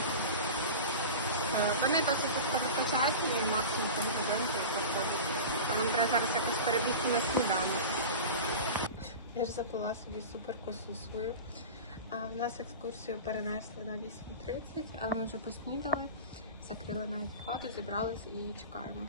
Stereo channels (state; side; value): inverted; both; correlation -0.31